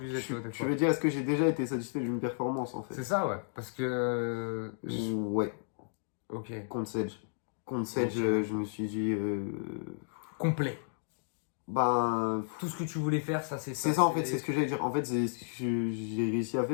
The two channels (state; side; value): silent; right; digital silence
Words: tu vois, des Tu fois? veux dire, est-ce que j'ai déjà été satisfait d'une performance en C'est fait? ça, ouais. Parce que, Ouais, ok, contre Sedge. Contre Sedge, ok. je me suis dit. Complet. Ben. Tout ce que tu voulais faire, ça, C'est ça en fait, c'est ce que j'allais dire. En fait, j'ai réussi à